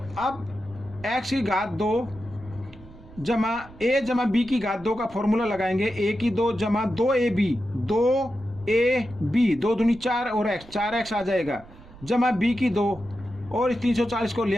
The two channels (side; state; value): right; noise; rumble, 20 dB below the sound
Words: अब x की घात 2 जमा a जमा b की घात 2 का फॉर्मूला लगाएंगे। a की 2 जमा 2ab 2ab 2 दूनी 4 और x 4x आ जाएगा, जमा b की 2 और 340 को ले